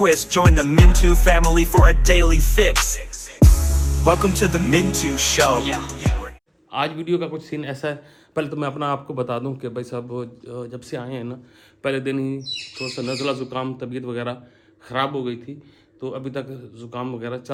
Join the Mintu family for a daily fix. Welcome to the Mintu Show. आज video का कुछ scene ऐसा है। पहले तो मैं अपना आपको बता दूं कि भाई साहब जब से आए हैं ना, पहले दिन ही थोड़ा सा नज़ला ज़ुकाम तबीयत वगैरह ख़राब हो गई थी। तो अभी तक ज़ुकाम वगैरह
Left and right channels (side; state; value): both; identical; correlation 1.00